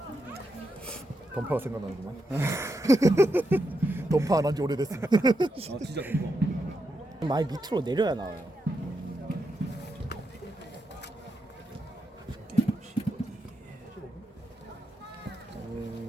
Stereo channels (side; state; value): both; normal; correlation 0.84